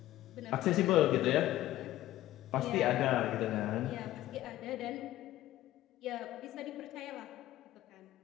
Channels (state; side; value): quieter; right; 14.8 dB